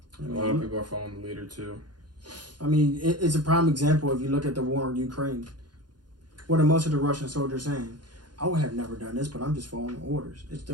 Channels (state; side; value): late; left; 0.70 ms